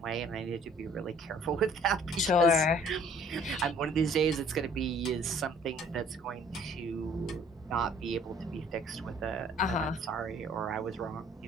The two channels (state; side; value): normal; both; correlation 0.56